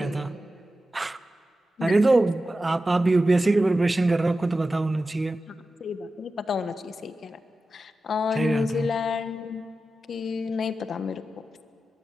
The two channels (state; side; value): normal; both; correlation 0.93